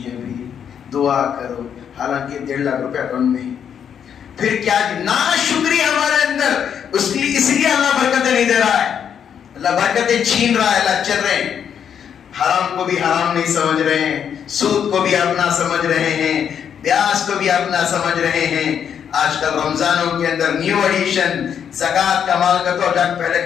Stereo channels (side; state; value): right; quieter; 8.2 dB